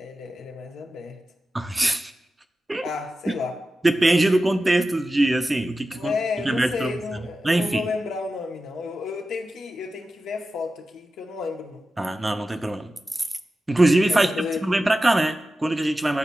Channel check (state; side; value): normal; both; correlation 0.93